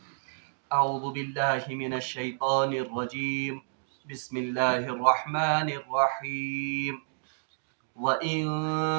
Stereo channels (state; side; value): silent; left; digital silence